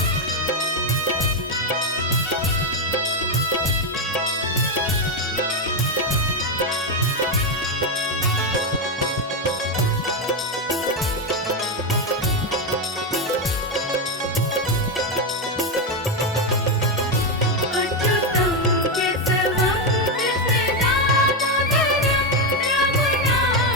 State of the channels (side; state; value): both; normal; correlation 0.07